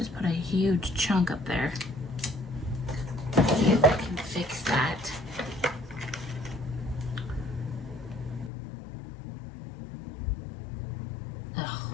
put a huge chunk up there. Let's see if I can fix that. Oh,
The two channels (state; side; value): drops out; right; at 8.5 s